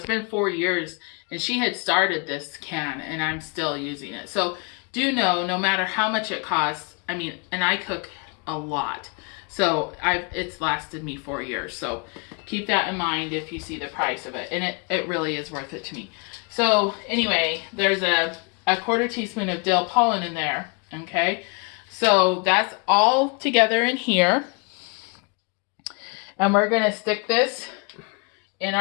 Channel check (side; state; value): right; quieter; 32.7 dB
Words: been 4 years, and she had started this can, and I'm still using it. So do know, no matter how much it costs, I mean, and I cook a lot, so it's lasted me 4 years. So keep that in mind if you see the price of it, and it really is worth it to me. So anyway, there's a 1/4 teaspoon of dill pollen in there, okay? So that's all together in here, and we're gonna stick this in